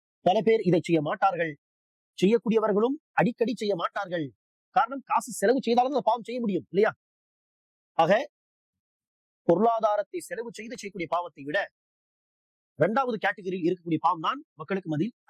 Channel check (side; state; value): both; identical; correlation 1.00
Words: பல பேர் இதை செய்ய மாட்டார்கள். செய்யக்கூடியவர்களும் அடிக்கடி செய்ய மாட்டார்கள். காரணம், காசு செலவு செய்தாலும் அந்த பாவம் செய்ய முடியும் இல்லையா? ஆக பொருளாதாரத்தை செலவு செய்து செய்யக்கூடிய பாவத்தை விட 2வது கேட்டகரியில் இருக்கக்கூடிய பாவம் தான் மக்களுக்கு மத்தியில்